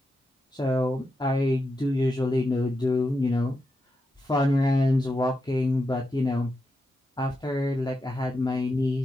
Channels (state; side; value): normal; both; correlation 0.86